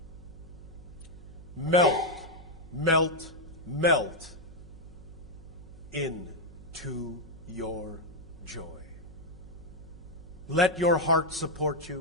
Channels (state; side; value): noise; right; hum, 17 dB below the sound